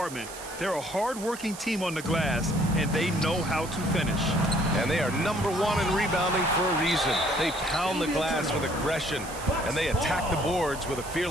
They're a hard-working team on the glass, and they know how to finish. And they are number one in rebounding for a reason. They pound the glass with aggression, and they attack the boards with a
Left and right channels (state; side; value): noise; right; hiss, 13 dB below the sound